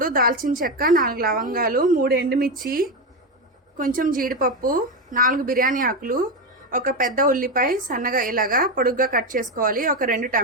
దాల్చిన చెక్క, 4 లవంగాలు, 3 ఎండుమిర్చి, కొంచెం జీడిపప్పు, 4 బిర్యానీ ఆకులు, ఒక పెద్ద ఉల్లిపాయ సన్నగా ఇలాగా పొడుగ్గా కట్ చేసుకోవాలి. ఒక 2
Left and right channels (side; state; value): both; normal; correlation 0.13